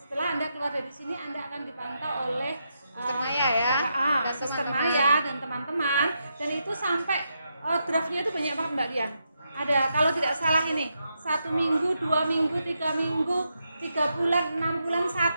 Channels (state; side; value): inverted; both; correlation -0.83